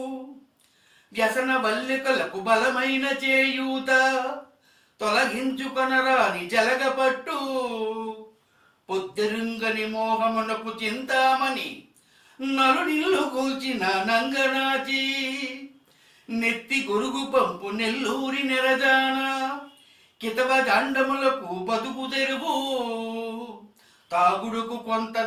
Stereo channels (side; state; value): both; identical; correlation 1.00